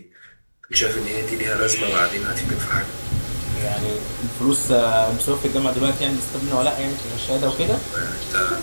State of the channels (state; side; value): inverted; both; correlation -1.00